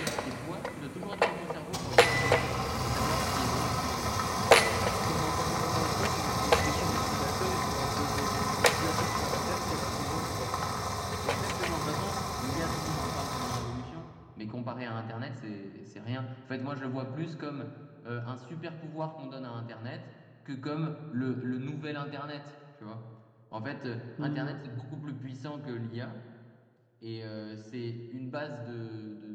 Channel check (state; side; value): identical; both; correlation 1.00